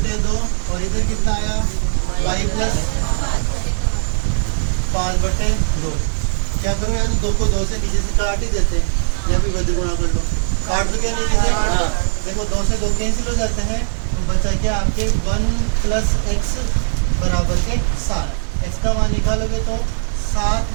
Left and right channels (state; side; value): silent; left; digital silence